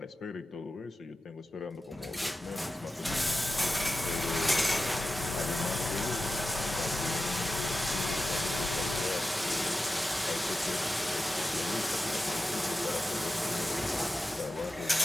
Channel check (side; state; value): both; normal; correlation 0.93